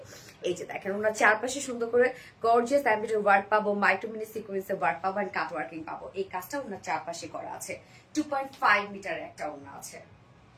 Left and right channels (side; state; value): both; identical; correlation 1.00